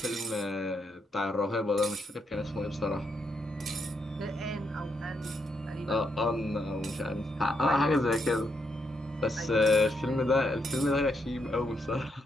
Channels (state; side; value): normal; both; correlation 0.79